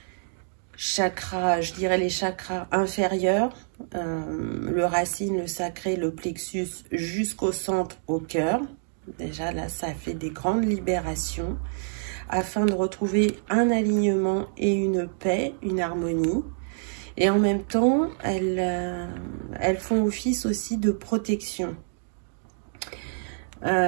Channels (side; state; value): left; silent; digital silence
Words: chakra, je dirais les chakras inférieurs, le racine, le sacré, le plexus jusqu'au centre, au cœur. Déjà là, ça fait des grandes libérations afin de retrouver un alignement et une paix, une harmonie. Et en même temps, elles font office aussi de protection.